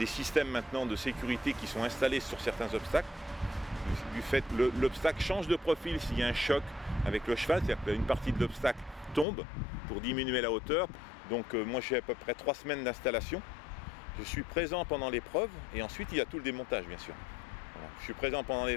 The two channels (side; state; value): right; drops out; at 9.2 s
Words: systèmes maintenant de sécurité qui sont installés sur certains obstacles. Du fait que l'obstacle change de profil s'il y a un choc avec le cheval, c'est-à-dire qu'une partie de l'obstacle tombe pour diminuer la hauteur. Donc moi j'ai à peu près 3 semaines d'installation. Je suis présent pendant l'épreuve et ensuite il y a tout le démontage bien sûr. Voilà. Je suis présent pendant